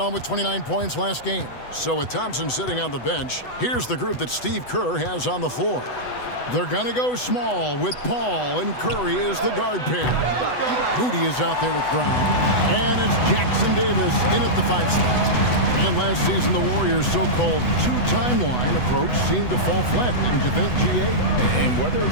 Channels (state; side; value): late; right; 8.1 ms